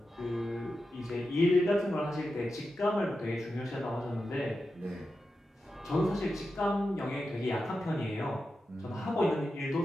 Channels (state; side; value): normal; both; correlation 0.90